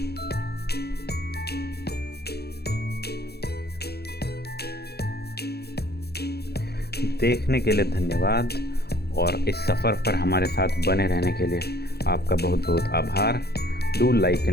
देखने के लिए धन्यवाद, और इस सफ़र पर हमारे साथ बने रहने के लिए आपका बहुत बहुत आभार। Do like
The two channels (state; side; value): late; right; 0.47 ms